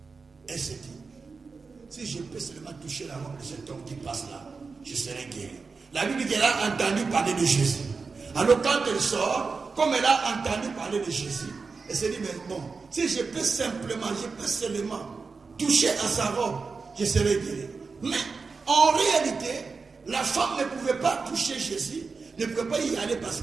elle s'est dit, si je peux seulement toucher la robe de cet homme qui passe là, je serai guéri. La Bible dit qu'elle a entendu parler de Jésus. Alors quand elle sort, comme elle a entendu parler de Jésus, elle s'est dit, mais bon, si je peux seulement toucher à sa robe, je serai guéri. Mais en réalité, la femme ne pouvait pas toucher Jésus, ne pouvait pas y aller parce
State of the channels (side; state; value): left; quieter; 4.6 dB